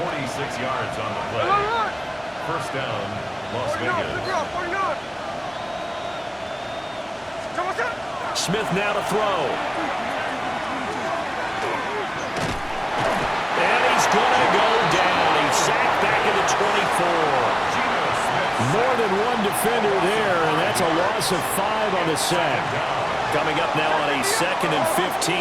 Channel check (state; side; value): identical; both; correlation 1.00